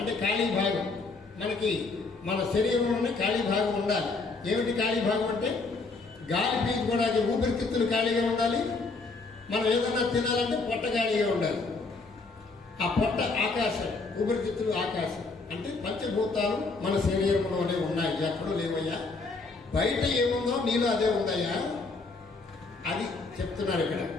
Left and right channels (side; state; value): right; quieter; 3.9 dB